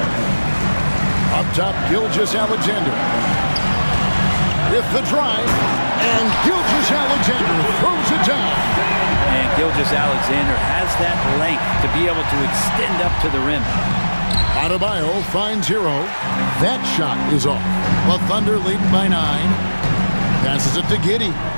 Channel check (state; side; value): inverted; both; correlation -1.00